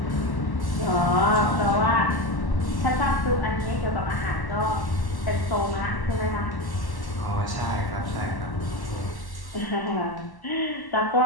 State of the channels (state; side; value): late; right; 1.1 ms